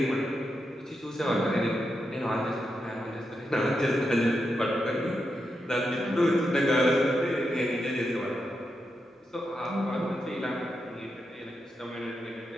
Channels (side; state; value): both; normal; correlation 0.86